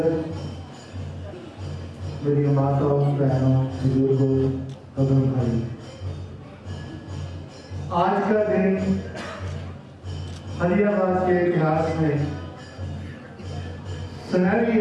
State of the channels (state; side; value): identical; both; correlation 1.00